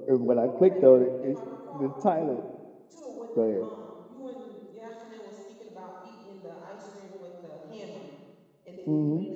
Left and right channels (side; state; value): both; identical; correlation 1.00